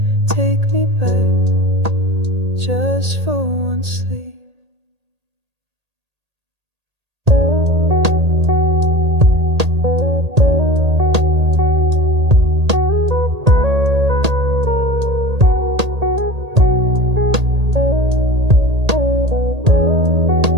Take me back, just for one sleep.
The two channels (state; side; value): late; left; 1.8 ms